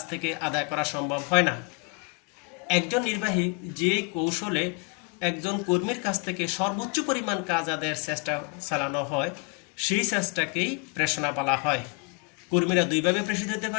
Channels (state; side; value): quieter; right; 33.2 dB